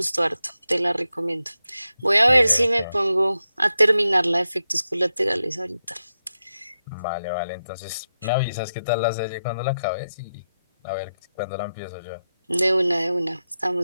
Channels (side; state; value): both; inverted; correlation -0.88